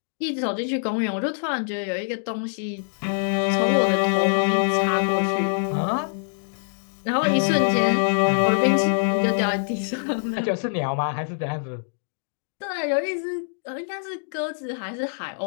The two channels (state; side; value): silent; right; digital silence